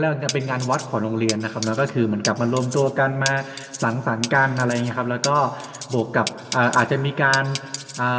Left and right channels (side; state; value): both; identical; correlation 1.00